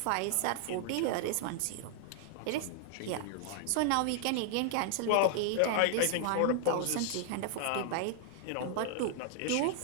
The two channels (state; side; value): different; both; correlation 0.00